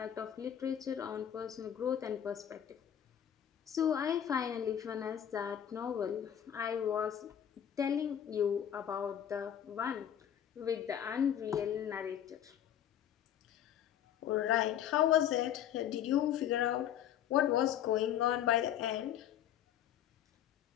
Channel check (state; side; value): quieter; right; 10.0 dB